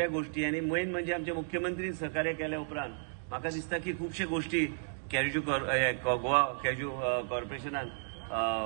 गोष्टी आणि मेन म्हणजे आमचे मुख्यमंत्री सहकार्य केल्या उपरांत म्हाका दिसता की खुबशे गोष्टी गोवा कॅज्यू कॉर्पोरेशनान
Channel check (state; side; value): silent; left; digital silence